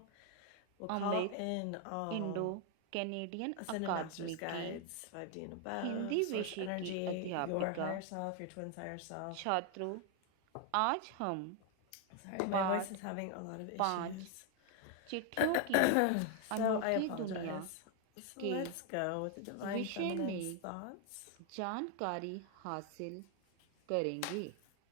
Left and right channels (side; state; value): both; different; correlation 0.01